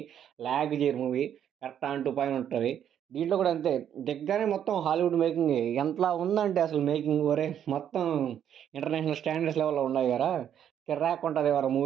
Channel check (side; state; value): left; quieter; 9.5 dB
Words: లాగ్ చేయరు movie. Correct on to point ఉంటది. దీంట్లో కూడా అంతే. దిగ్గానే మొత్తం హాలీవుడ్ మేకింగే. ఎంతలా ఉందంటే అసలు మేకింగ్ ఒరేయ్! మొత్తం ఇంటర్నేషనల్ స్టాండర్డ్స్ లెవెల్‌లో ఉన్నాయి గదా! కిర్రాకుంటది ఎవరా